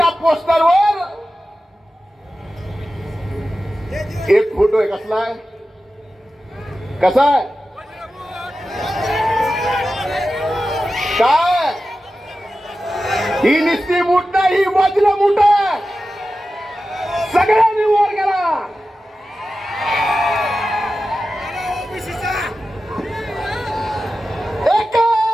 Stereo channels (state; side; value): normal; both; correlation 0.93